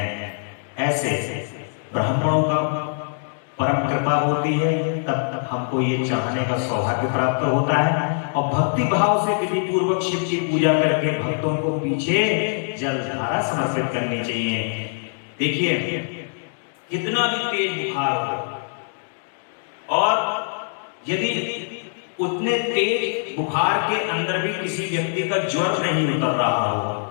ऐसे ब्राह्मणों का परम कृपा होती है, तब हमको ये चाहने का सौभाग्य प्राप्त होता है। और भक्ति भाव से विधि पूर्वक शिव की पूजा करके भक्तों को पीछे जलधारा समर्पित करनी चाहिए। देखिए, कितना भी तेज बुखार हो और यदि उतने तेज बुखार के अंदर भी किसी व्यक्ति का ज्वर नहीं उतर रहा हो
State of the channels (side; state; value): right; silent; digital silence